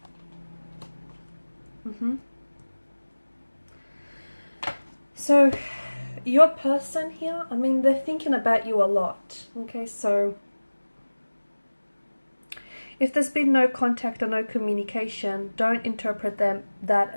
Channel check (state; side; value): inverted; both; correlation -1.00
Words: So your person here, I mean, they're thinking about you a lot. Okay, so if there's been no contact or no communication, don't interpret that